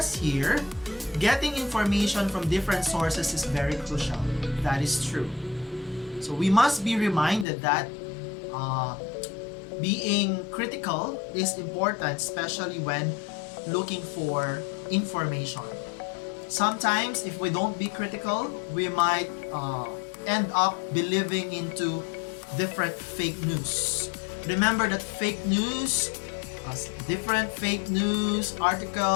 here, getting information from different sources is very crucial. That is true. So we must be reminded that being critical is important, especially when looking for information. Sometimes if we don't be critical, we might end up believing into different fake news. Remember that different fake news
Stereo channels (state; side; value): drops out; right; at 7.5 s